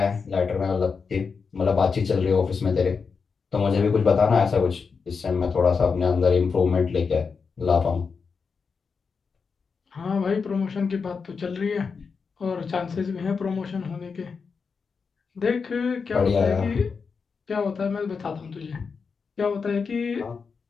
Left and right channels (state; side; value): quieter; right; 5.3 dB